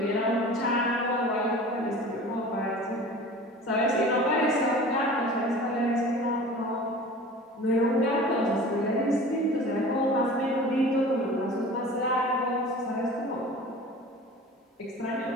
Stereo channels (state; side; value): normal; both; correlation 0.40